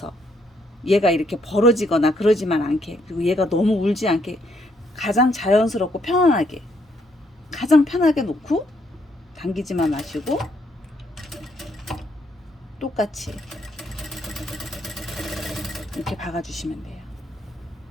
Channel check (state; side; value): normal; both; correlation 0.72